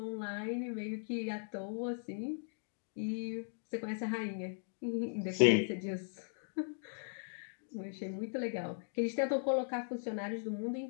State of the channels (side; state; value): right; silent; digital silence